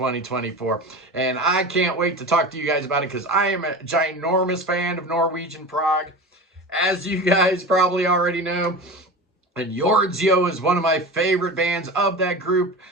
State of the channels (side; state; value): both; normal; correlation 0.31